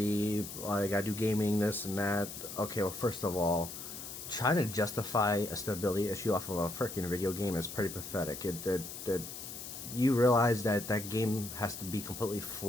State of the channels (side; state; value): left; noise; hiss, 10 dB below the sound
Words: like I do gaming, this and that. Okay, well, first of all, trying to justify a stability issue off of a freaking video game is pretty pathetic. It you realize that that game has to be completely